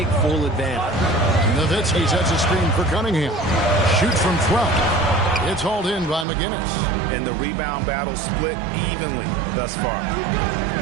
full advantage. Nowitzki sets a screen for Cunningham. Shoots from 12. It's hauled in by McGinnis. And the rebound battle split evenly thus far.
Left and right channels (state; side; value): drops out; left; at 6.2 s